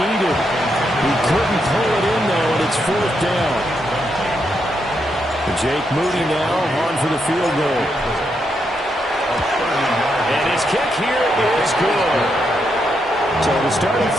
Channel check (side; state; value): both; normal; correlation 0.80